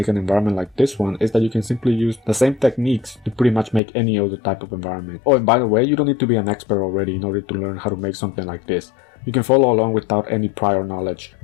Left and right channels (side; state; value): right; drops out; at 3.8 s